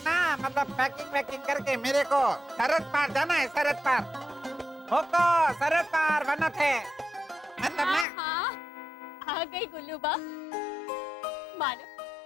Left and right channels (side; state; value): right; drops out; at 8.1 s